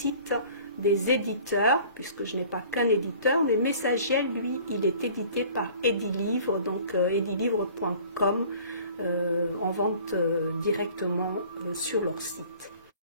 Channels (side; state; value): both; inverted; correlation -0.49